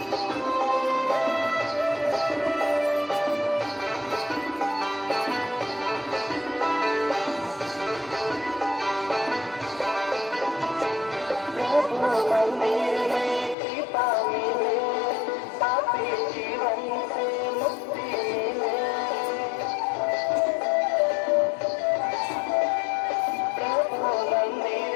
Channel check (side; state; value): right; drops out; at 13.6 s